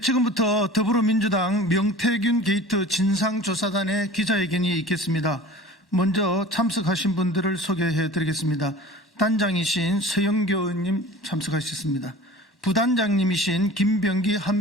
지금부터 더불어민주당 명태균 게이트 진상조사단의 기자회견이 있겠습니다. 먼저 참석하신 분들을 소개해 드리겠습니다. 단장이신 서영교 의원님 참석하셨습니다. 부단장님이신 김병기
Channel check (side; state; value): both; normal; correlation 0.41